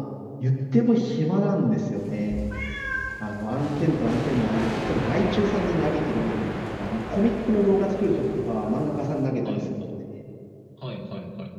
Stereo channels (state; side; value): identical; both; correlation 1.00